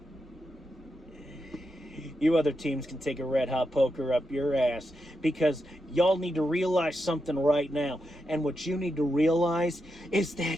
can take a red hot poker up your ass. Because y'all need to realize something right now. And what you need to realize is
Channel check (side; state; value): both; normal; correlation 0.86